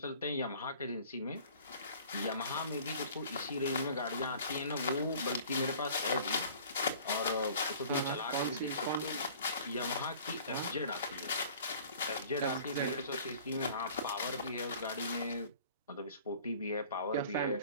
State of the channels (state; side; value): inverted; both; correlation -0.48